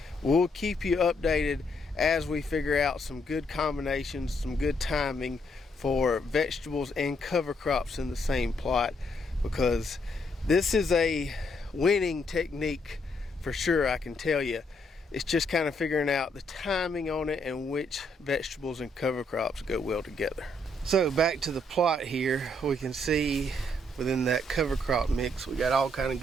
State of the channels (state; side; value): normal; both; correlation 0.73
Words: we'll keep you updated as we figure out some good combinations, some good timing for vegetables and cover crops in the same plot, because this is a winning technique for sure, I can tell you. It's just kind of figuring out the timing on it and which vegetables and cover crops go well together. So back to the plot here, we can see within that cover crop mix, we got all kind of